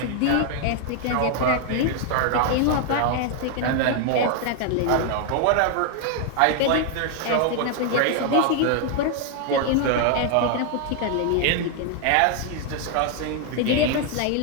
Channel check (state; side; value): different; both; correlation 0.00